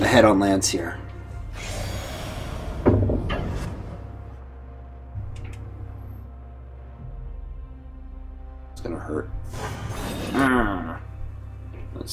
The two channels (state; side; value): identical; both; correlation 1.00